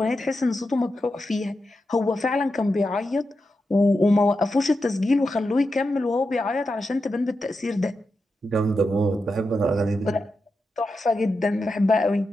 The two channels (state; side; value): normal; both; correlation 0.88